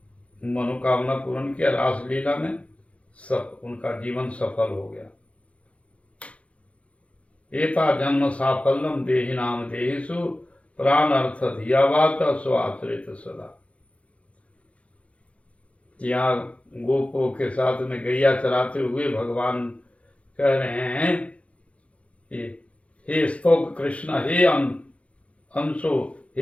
मनोकामना पूर्ण किया, रासलीला में सब उनका जीवन सफल हो गया। एता जन्म साफल्यम देहि नाम देहिषु प्राण अर्थ धियावाच स्वाश्रित सदा। यहाँ गोपों के साथ में गैया चराते हुए भगवान कह रहे हैं, हे स्तोक कृष्ण हे अंशो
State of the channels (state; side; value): late; right; 0.063 ms